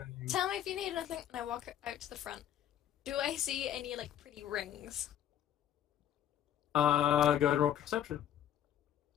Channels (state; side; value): quieter; right; 10.8 dB